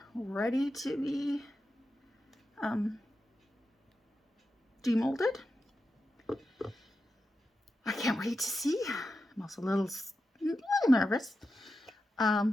ready to be demolded. I can't wait to see. I'm also a little nervous.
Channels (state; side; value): normal; both; correlation 0.90